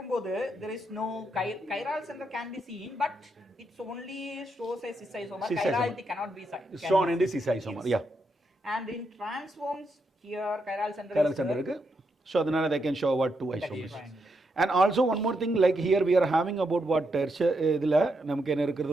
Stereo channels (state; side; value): normal; both; correlation 0.81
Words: there is no chiral center can be seen, but it's only shows a cis isomer. Chirality cannot be seen. Shown in the cis isomer. Yeah. And in transforms here chiral center இருக்கு. So அதனால they can show what 2 isomers. And also one more thing, like here we are having about what tertiary இதுல நமக்கு என்ன இருக்குது